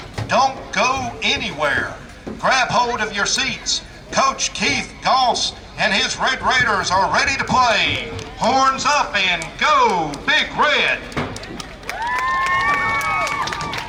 don't go anywhere. Grab hold of your seats. Coach Keith Goss and his Red Raiders are ready to play. Horns up and go, Big Red!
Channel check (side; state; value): both; identical; correlation 1.00